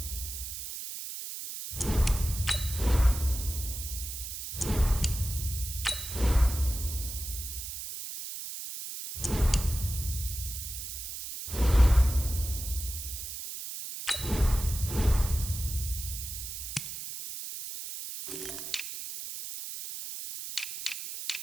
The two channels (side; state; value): right; noise; hiss, 7 dB below the sound